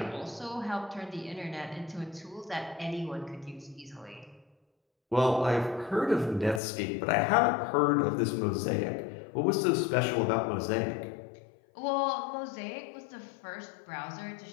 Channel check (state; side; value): drops out; right; at 6.6 s